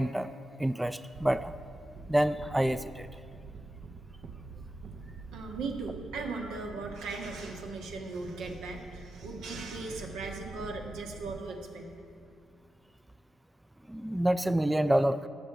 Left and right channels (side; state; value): both; normal; correlation 0.93